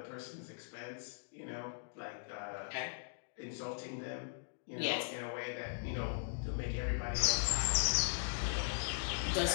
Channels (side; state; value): right; silent; digital silence